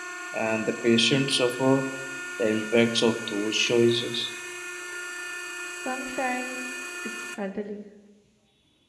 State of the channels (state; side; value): identical; both; correlation 1.00